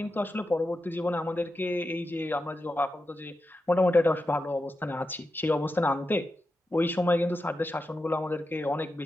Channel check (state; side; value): normal; both; correlation 0.89